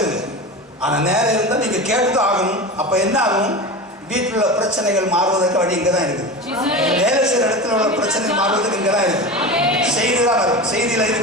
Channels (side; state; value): both; normal; correlation 0.28